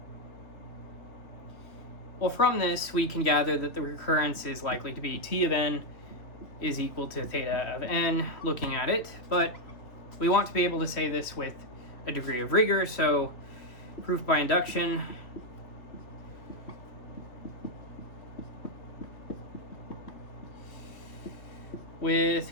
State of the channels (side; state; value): right; late; 2.8 ms